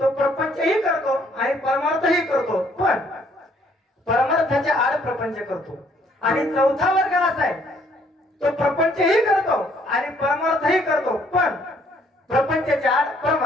प्रपंचही करतो आणि परमार्थही करतो, पण परमार्थाच्या आड प्रपंच करतो. आणि चौथा वर्ग असा आहे तो प्रपंचही करतो आणि परमार्थही करतो, पण प्रपंचाच्या आड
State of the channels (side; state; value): both; normal; correlation 0.65